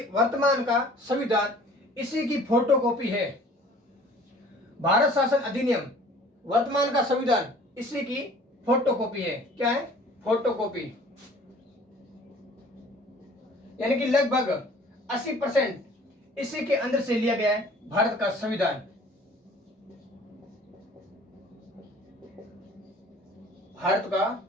वर्तमान का संविधान, इसी की फोटोकॉपी है। भारत शासन अधिनियम वर्तमान का संविधान, इसी की फोटोकॉपी है। क्या है? फोटोकॉपी। यानी कि लगभग 80% इसी के अंदर से लिया गया है भारत का संविधान।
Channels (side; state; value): both; normal; correlation 0.51